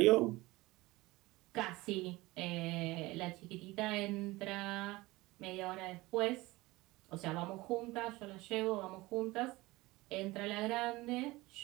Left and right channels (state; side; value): quieter; left; 20.6 dB